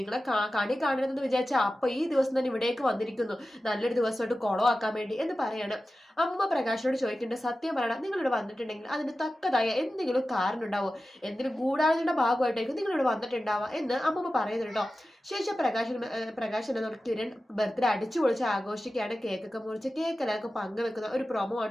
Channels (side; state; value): both; normal; correlation 0.94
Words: കണി കാണരുതെന്ന് വിചാരിച്ചാൽ അപ്പൊ ഈ ദിവസം തന്നെ ഇവിടേക്ക് വന്നിരിക്കുന്നു, നല്ലൊരു ദിവസമായിട്ട് കുളമാക്കാൻ വേണ്ടി എന്ന് പറയാണ്. അമ്മ പ്രകാശനോട് ചോദിക്കേണ്ട, സത്യം പറയണം, നിങ്ങളിവിടെ വന്നിട്ടുണ്ടെങ്കിൽ അതിന് തക്കതായ എന്തെങ്കിലും കാരണം ഉണ്ടാവോ, എന്തെങ്കിലും ഗൂഢാലോചനയുടെ ഭാഗമായിട്ടായിരിക്കും നിങ്ങളിവിടെ വന്നിട്ടുണ്ടാവുക എന്ന് അമ്മമ്മ പറയുന്നുണ്ടോ. ശേഷം പ്രകാശൻ കിരൺ ബർത്ത്ഡേ അടിച്ചു പൊളിച്ച് ആഘോഷിക്കുകയാണ്. കേക്കൊക്കെ മുറിച്ച് കേക്ക് എല്ലാവർക്കും പങ്കുവെക്കുന്ന ഒരു പ്രൊമോ